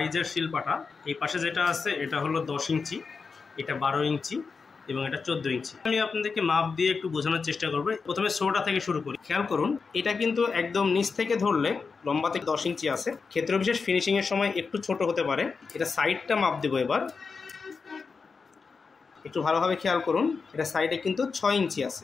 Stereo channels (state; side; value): quieter; right; 4.9 dB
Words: শিল পাটা। এই পাশে যেটা আছে এটা হলো 10 ইঞ্চি, এটা 12 ইঞ্চি এবং এটা 14 ইঞ্চি। আমি আপনাদেরকে মাপ দিয়ে একটু বোঝানোর চেষ্টা করব। প্রথমে ছোটটা থেকে শুরু করি। খেয়াল করুন, এটা কিন্তু একদম নিচ থেকে ধরলে লম্বা থেকে 10 ইঞ্চি আছে। ক্ষেত্র বিশেষ ফিনিশিংয়ের সময় একটু ছোট হতে পারে। এটা সাইডটা মাপ দেবো এবার, একটু ভালোভাবে খেয়াল করুন। এটা সাইডে কিন্তু 6 ইঞ্চি আছে